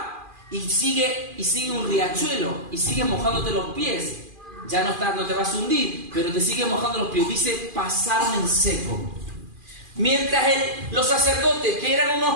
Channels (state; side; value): late; left; 2.4 ms